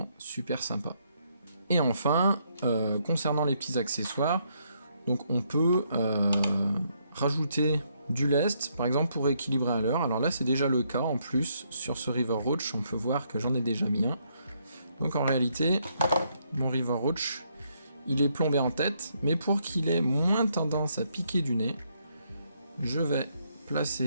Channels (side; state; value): both; inverted; correlation -0.74